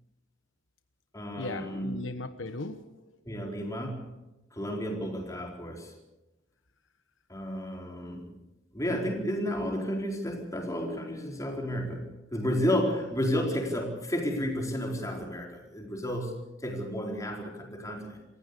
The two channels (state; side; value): normal; both; correlation 0.67